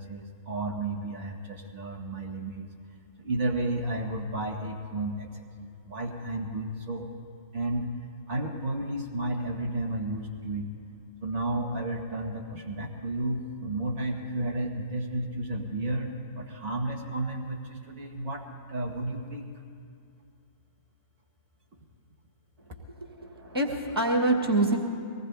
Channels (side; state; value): both; inverted; correlation -0.50